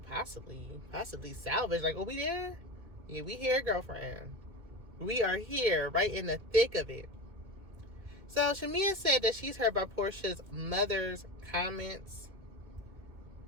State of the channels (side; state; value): left; late; 2.4 ms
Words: possibly salvage. Like, oh, we there? Yeah, we here, girlfriend. We are here, right in the thick of it. So Shamea said that she's heard about Porsha's mother's comments.